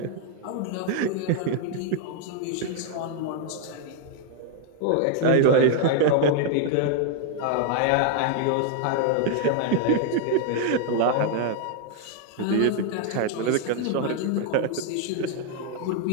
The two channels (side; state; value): both; different; correlation -0.01